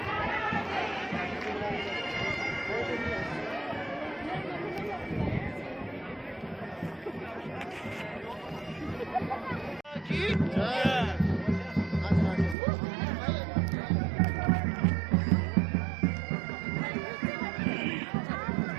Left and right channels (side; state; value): left; drops out; at 12.6 s